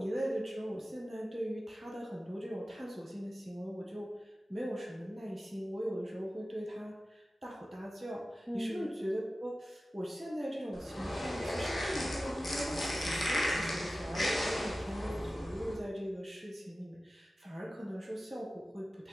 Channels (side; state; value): both; normal; correlation 0.96